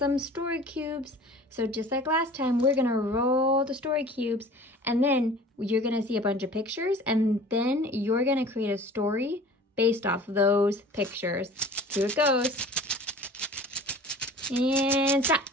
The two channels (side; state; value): both; normal; correlation 0.43